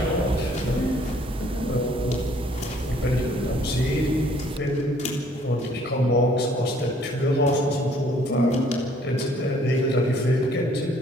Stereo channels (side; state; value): both; normal; correlation 0.61